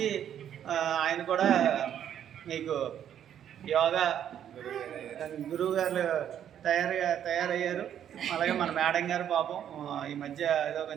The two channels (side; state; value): left; quieter; 9.8 dB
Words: ఆయన కూడా మీకు యోగా గురువు గారు తయారయ్యారు. అలాగే మన మేడం గారు పాపం ఈ మధ్య ఏదో